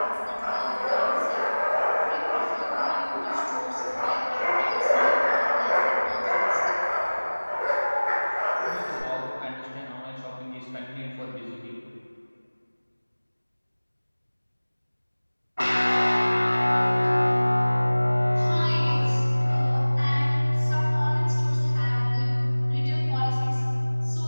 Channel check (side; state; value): both; inverted; correlation -1.00